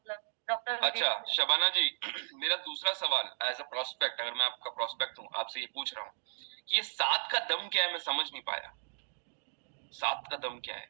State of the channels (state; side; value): silent; left; digital silence